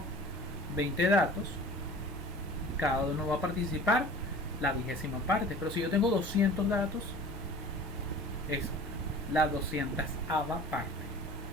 20 datos, cada uno va a participar la 20ª parte, pero si yo tengo 200 datos, es la 200ª parte.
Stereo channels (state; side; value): normal; both; correlation 0.43